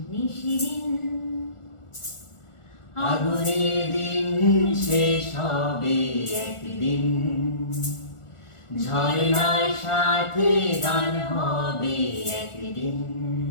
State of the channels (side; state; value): right; late; 1.4 ms